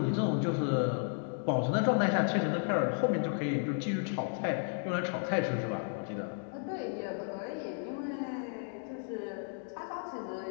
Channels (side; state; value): right; silent; 55 dB below the other